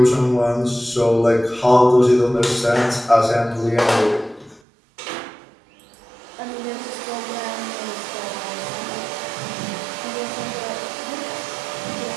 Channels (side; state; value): left; drops out; at 4.6 s